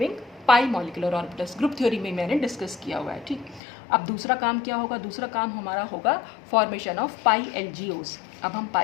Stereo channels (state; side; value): drops out; right; at 3.6 s